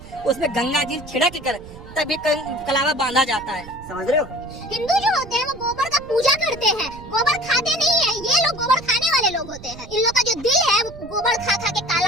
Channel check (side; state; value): right; noise; rumble, 16 dB below the sound